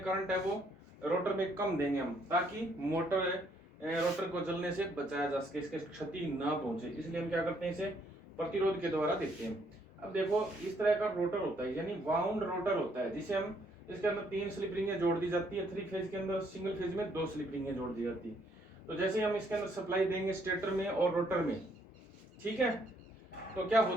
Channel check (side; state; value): both; normal; correlation 0.69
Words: करंट है वो रोटर में कम देंगे हम, ताकि रोटर को जलने से बचाया जा सके, इसके क्षति ना पहुंचे, इसलिए हम क्या करते हैं, इसे प्रतिरोध के द्वारा देते हैं। अब देखो इस तरह का रोटर होता है, यानी वाउंड रोटर होता है, जिसे हम, इसके अंदर 3 स्लिप रिंगें जोड़ दी जाती है, 3 फेज के अंदर, सिंगल फेज में 2 स्लिप रिंगें जोड़ दी जाती है। तो जैसे हम इसके अंदर सप्लाई देंगे स्टेटर में और रोटर में, ठीक है, तो क्या